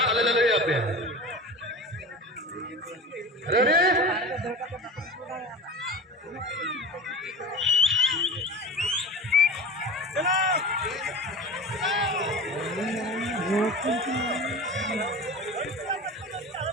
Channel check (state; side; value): normal; both; correlation 0.32